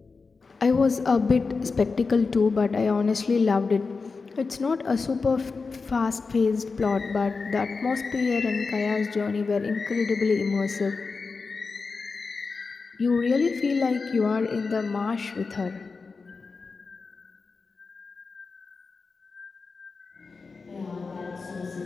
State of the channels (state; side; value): quieter; right; 4.5 dB